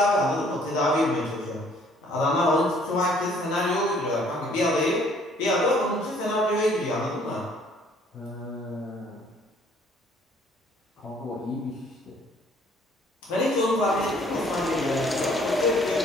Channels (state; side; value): normal; both; correlation 0.60